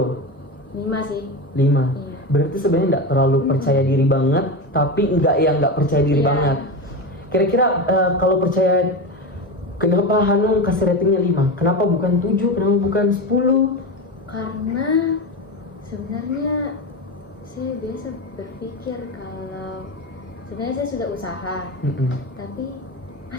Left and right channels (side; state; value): both; normal; correlation 0.20